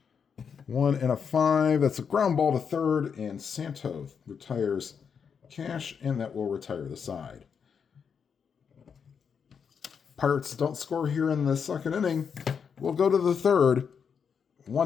1 and a 5. That's a ground ball to third, and Santo retires Cash, and that will retire the side. Pirates don't score here in the second inning. We'll go to the third.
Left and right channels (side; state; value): right; quieter; 6.7 dB